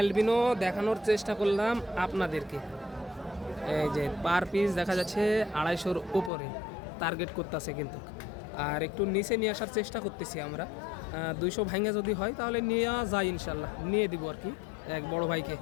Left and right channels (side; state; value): right; drops out; at 6.3 s